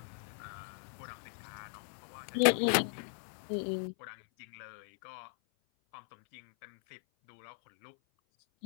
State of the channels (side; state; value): right; silent; 53 dB below the other